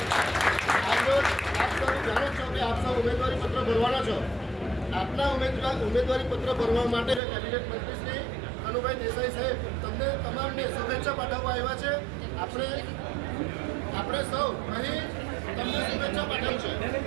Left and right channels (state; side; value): drops out; left; at 7.2 s